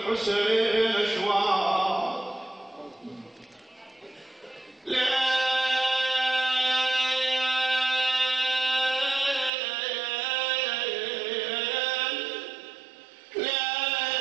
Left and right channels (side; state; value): left; drops out; at 9.5 s